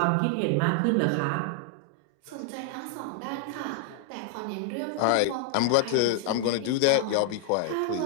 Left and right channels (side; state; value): both; different; correlation -0.01